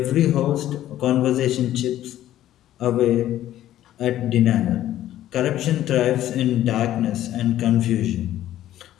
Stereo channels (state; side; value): quieter; right; 12.9 dB